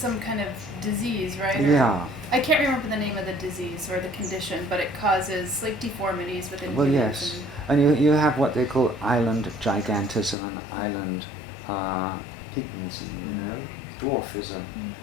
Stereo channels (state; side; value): drops out; right; at 10.4 s